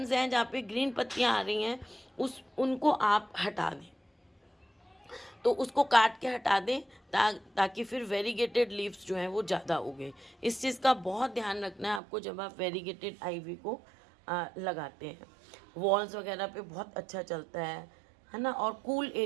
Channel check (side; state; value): left; drops out; at 12.0 s